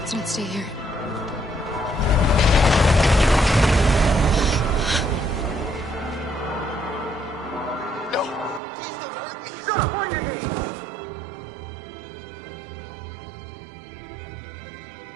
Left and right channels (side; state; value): left; drops out; at 8.6 s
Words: not stay here. No! Please don't hurt me! Stop on your knees!